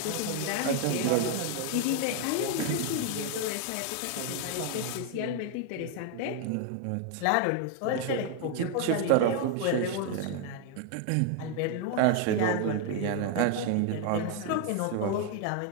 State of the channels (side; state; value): both; different; correlation 0.00